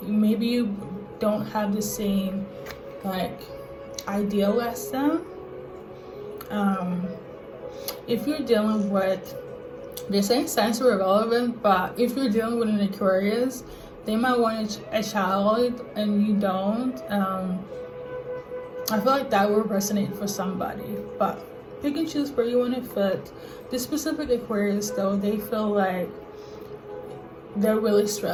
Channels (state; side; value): identical; both; correlation 1.00